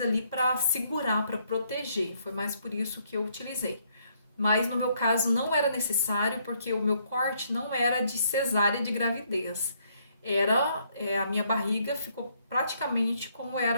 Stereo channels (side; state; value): both; inverted; correlation -0.70